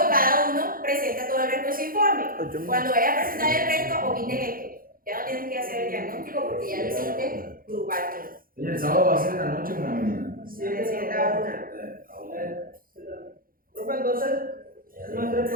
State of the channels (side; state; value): left; late; 0.42 ms